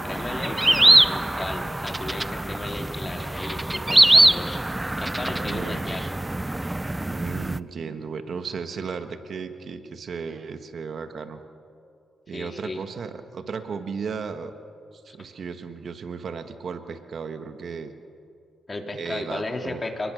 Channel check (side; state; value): both; normal; correlation 0.98